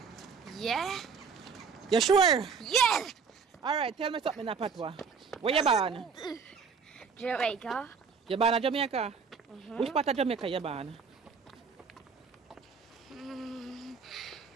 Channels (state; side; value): quieter; left; 5.7 dB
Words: Yeah. You sure? Yeah. Alright, tell me something in a patois. Where you born? Jamaica. You born in Jamaica? Which part of Jamaica you born?